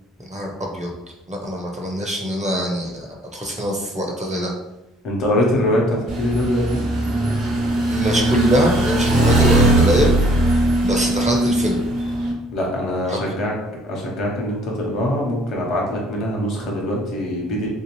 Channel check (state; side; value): normal; both; correlation 0.60